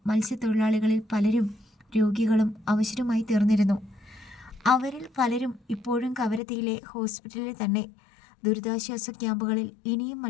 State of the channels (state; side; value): drops out; right; at 6.4 s